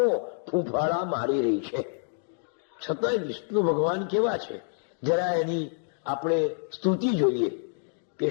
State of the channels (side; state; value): right; silent; digital silence